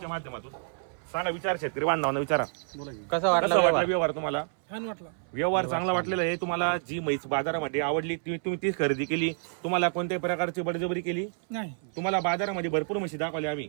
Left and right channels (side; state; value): left; silent; 59 dB below the other